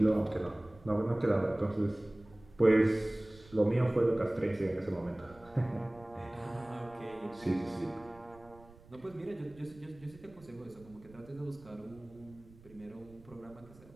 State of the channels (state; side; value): noise; right; rumble, 23 dB below the sound